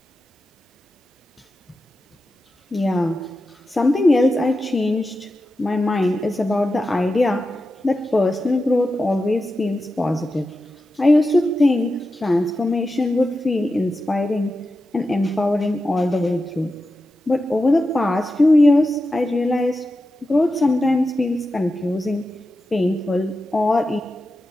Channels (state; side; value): normal; both; correlation 0.91